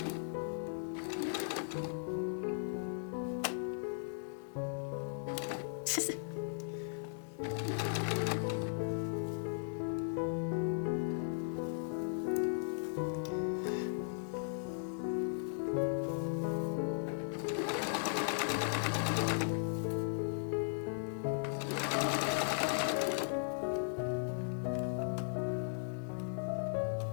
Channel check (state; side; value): silent; right; digital silence